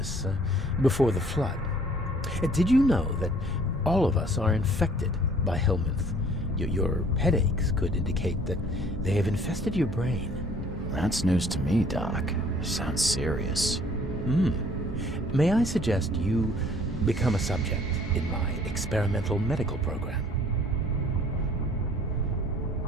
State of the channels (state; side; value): normal; both; correlation 0.56